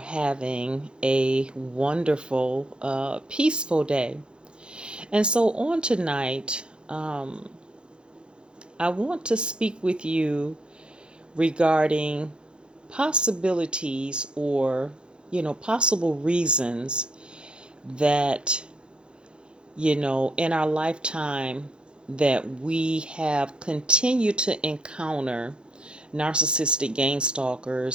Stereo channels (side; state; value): left; late; 0.052 ms